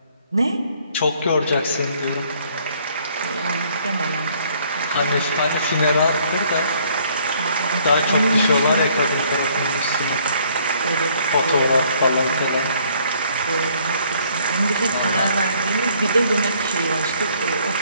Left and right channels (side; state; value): both; inverted; correlation -0.63